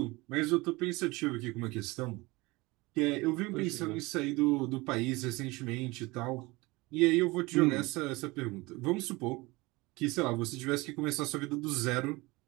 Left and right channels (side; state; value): left; quieter; 22.8 dB